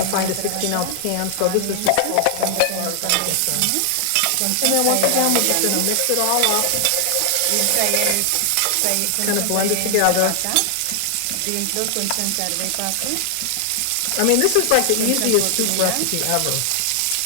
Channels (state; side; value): different; both; correlation 0.00